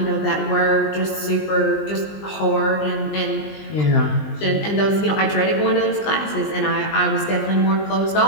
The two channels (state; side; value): late; right; 20 ms